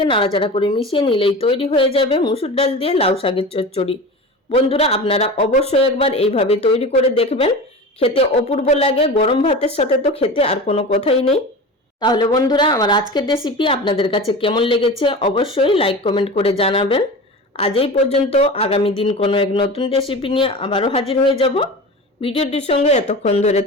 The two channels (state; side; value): normal; both; correlation 0.31